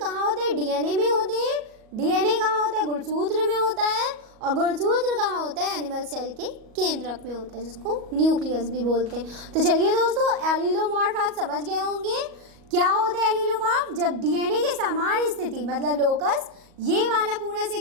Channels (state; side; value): late; left; 38 ms